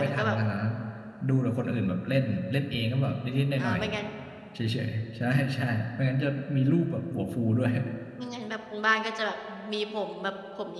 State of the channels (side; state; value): both; identical; correlation 1.00